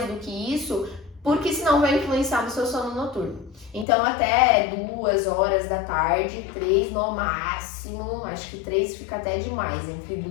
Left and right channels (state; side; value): drops out; right; at 3.9 s